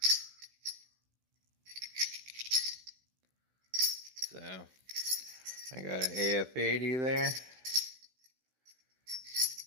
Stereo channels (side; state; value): left; late; 16 ms